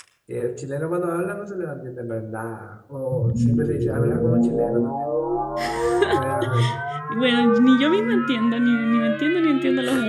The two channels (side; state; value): both; identical; correlation 1.00